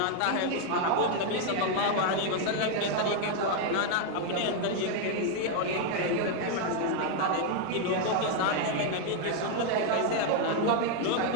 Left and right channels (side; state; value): both; different; correlation 0.01